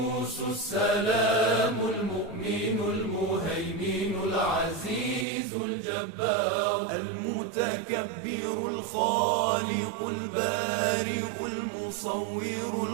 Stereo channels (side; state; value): left; drops out; at 5.2 s